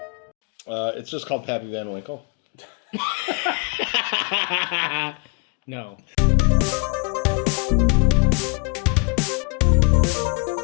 It's just called Pappy Van Winkle. No.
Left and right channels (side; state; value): right; quieter; 32.4 dB